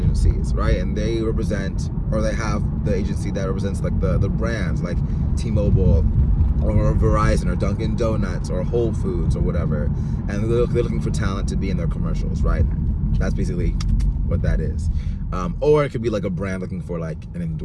right? And they represent, or they have the agency that represents like the brands like T-Mobile or Verizon or Dunkin' Donuts or Whole Foods or whatever. And they're looking for talent to be in their commercials, right? That's basically what that is. Or it could be like a brand looking for like an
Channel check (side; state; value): both; identical; correlation 1.00